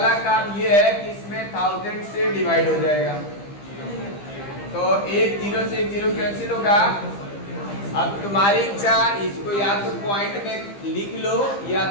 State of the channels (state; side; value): late; right; 15 ms